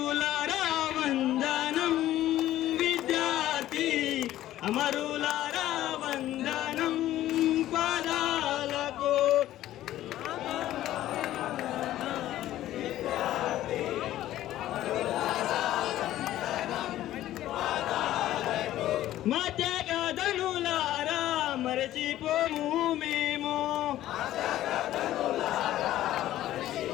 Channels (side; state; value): right; quieter; 13.8 dB